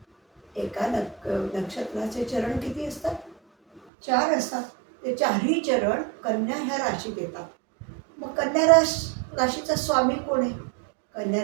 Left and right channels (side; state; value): left; drops out; at 3.8 s